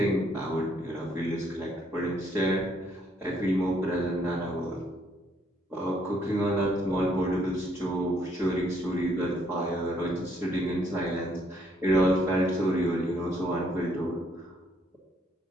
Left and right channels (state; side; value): normal; both; correlation 0.69